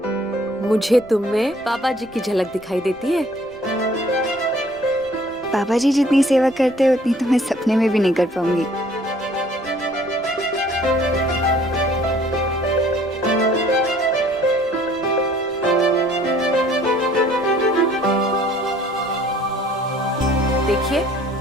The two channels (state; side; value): noise; right; rumble, 25 dB below the sound